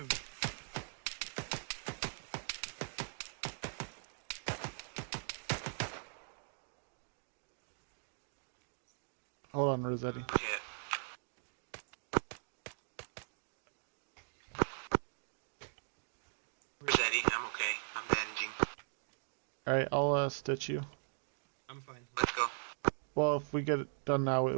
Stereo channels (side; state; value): left; silent; digital silence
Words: Hold on, Rossetti. Rossetti, I'm okay. I'm bandaging. Alright, I'll stitch you. I'm fine. Let's go. Well, if we get it done now, it